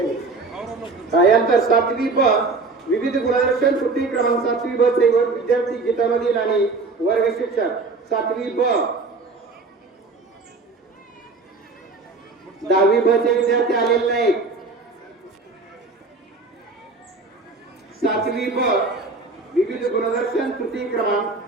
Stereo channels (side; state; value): left; quieter; 3.8 dB